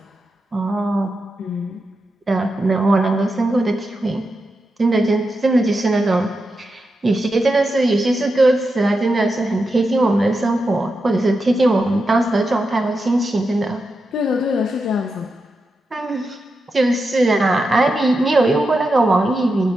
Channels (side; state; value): both; normal; correlation 0.88